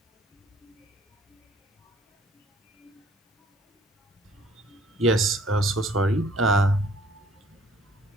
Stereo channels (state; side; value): normal; both; correlation 0.57